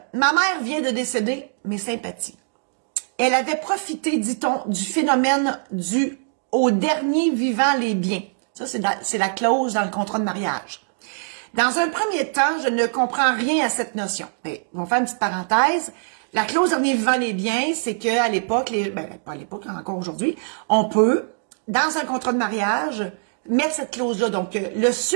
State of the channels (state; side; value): silent; left; digital silence